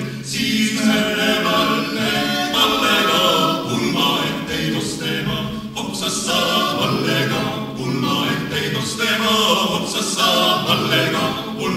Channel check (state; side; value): identical; both; correlation 1.00